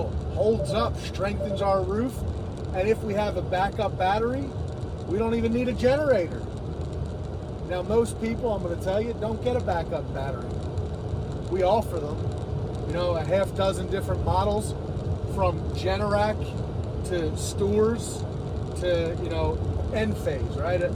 holds up, strengthens our roof, and if we have a backup battery, we don't even need a generator. Now, most people, I'm going to tell you, don't get a backup battery. We offer them, a half dozen different models, from Generac to Stores to, Enphase, right?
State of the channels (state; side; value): identical; both; correlation 1.00